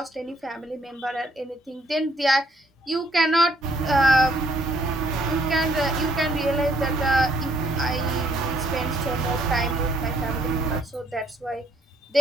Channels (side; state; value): both; normal; correlation 0.67